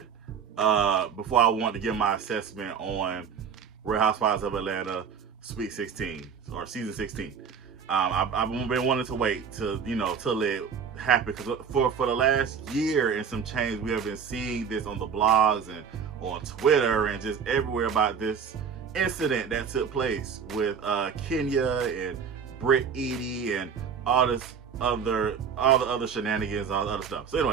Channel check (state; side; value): quieter; left; 6.8 dB